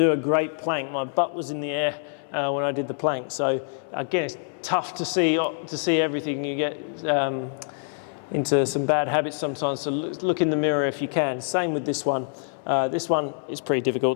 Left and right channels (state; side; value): silent; right; 59 dB below the other